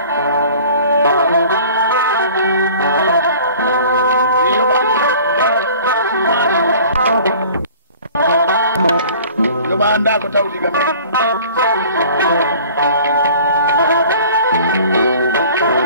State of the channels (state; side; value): inverted; both; correlation -0.47